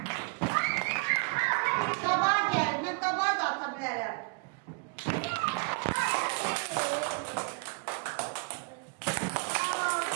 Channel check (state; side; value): quieter; left; 32.2 dB